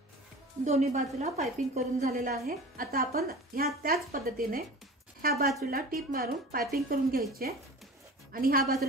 दोन्ही बाजूला पाइपिंग करून झालेला आहे। आता आपण ह्या त्याच पद्धतीने ह्या बाजूला टीप मारून पाइपिंग करून घ्यायची आणि ह्या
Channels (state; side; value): normal; both; correlation 0.37